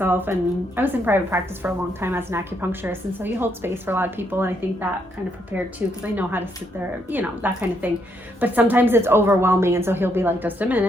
and I was in private practice for a long time as an acupuncturist, and so you hold space for a lot of people, and I think that kind of prepared too, because I know how to sit there, you know, that kind of thing. But sometimes it's overwhelming, and so he'll be like, just a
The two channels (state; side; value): normal; both; correlation 0.75